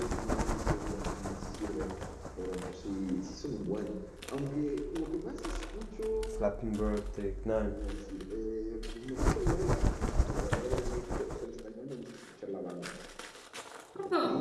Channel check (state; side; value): identical; both; correlation 1.00